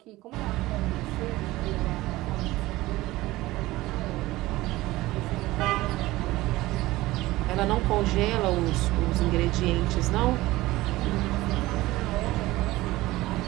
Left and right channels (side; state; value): left; quieter; 18.3 dB